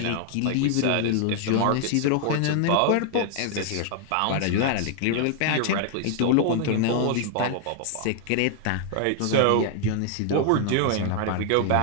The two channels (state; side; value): different; both; correlation 0.00